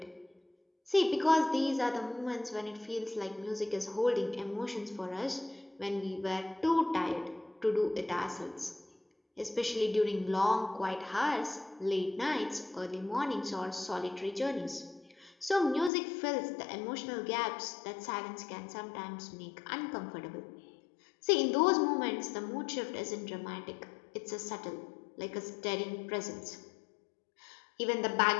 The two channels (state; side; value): drops out; right; at 15.9 s